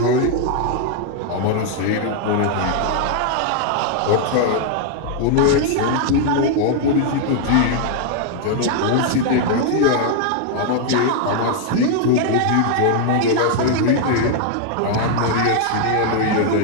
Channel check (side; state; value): both; different; correlation 0.00